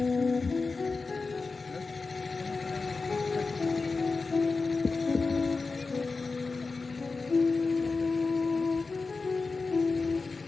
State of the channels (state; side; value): quieter; right; 4.1 dB